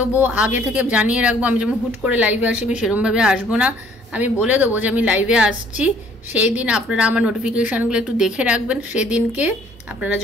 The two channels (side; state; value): both; normal; correlation 0.59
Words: আগে থেকে জানিয়ে রাখবো। আমি যেমন হুট করে লাইভে আসি আমি সেরকমভাবে আসবো না, আমি বলে দেবো যে আমি লাইভে আসছি। সেই দিন আপনারা আমার নোটিফিকেশানগুলো একটু দেখে রাখবেন, সেদিনকে আপনারা